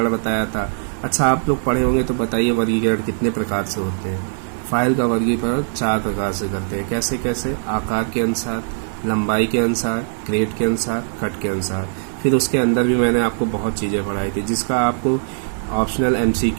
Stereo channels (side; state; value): left; silent; 56 dB below the other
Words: बताया था। अच्छा, आप लोग पढ़े होंगे तो बताइए वर्गीकरण कितने प्रकार से होते हैं। फाइल का वर्गीकरण 4 प्रकार से करते हैं। कैसे कैसे? आकार के अनुसार, लंबाई के अनुसार, ग्रेड के अनुसार, कट के अनुसार। फिर उसके अंदर भी मैंने आपको बहुत चीज़ें पढ़ाई थी जिसका आपको ऑप्शनल